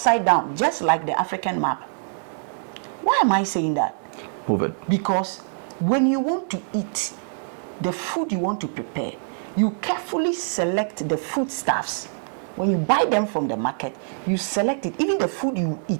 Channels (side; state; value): left; silent; digital silence